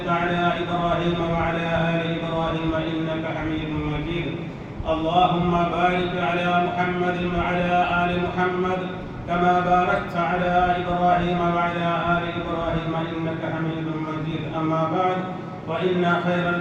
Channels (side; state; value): both; identical; correlation 1.00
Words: على إبراهيم وعلى آل إبراهيم إنك حميد مجيد اللهم بارك على محمد وعلى آل محمد كما باركت على إبراهيم وعلى آل إبراهيم إنك حميد مجيد أما بعد فإن خير